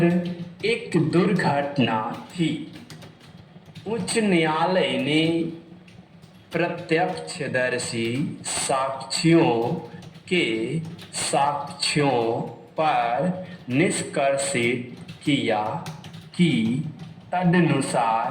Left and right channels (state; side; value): identical; both; correlation 1.00